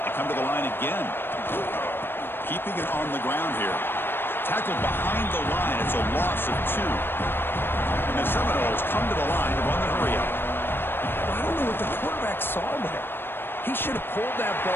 come to the line again. Keeping it on the ground here. Tackled behind the line. It's a loss of 2. And the Seminoles come to the line to run the hurry up. Well, I don't know what the quarterback saw there. He should have pulled that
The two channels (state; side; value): late; right; 0.10 ms